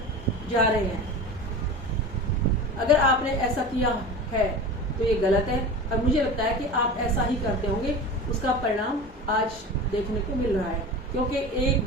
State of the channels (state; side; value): normal; both; correlation 0.31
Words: जा रहे हैं? अगर आपने ऐसा किया है तो ये गलत है और मुझे लगता है कि आप ऐसा ही करते होंगे। उसका परिणाम आज देखने को मिल रहा है, क्योंकि